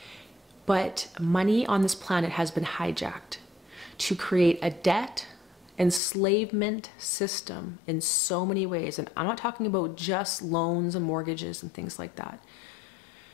But money on this planet has been hijacked to create a debt enslavement system in so many ways. And I'm not talking about just loans and mortgages and things like that,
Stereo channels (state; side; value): drops out; right; at 6.0 s